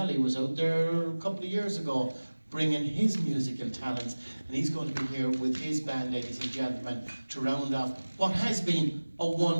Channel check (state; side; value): inverted; both; correlation -1.00